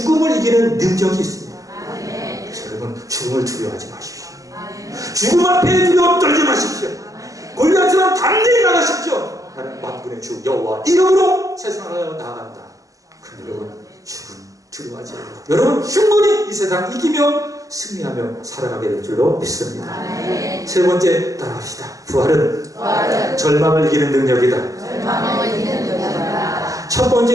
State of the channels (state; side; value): late; left; 0.16 ms